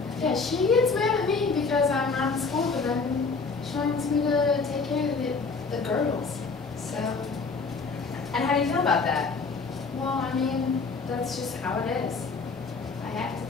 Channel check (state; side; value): quieter; right; 4.5 dB